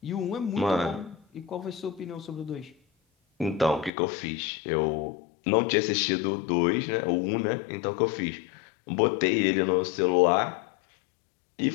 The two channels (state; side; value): drops out; right; at 3.9 s